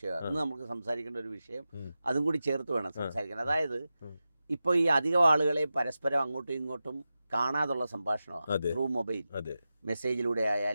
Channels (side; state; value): both; inverted; correlation -0.92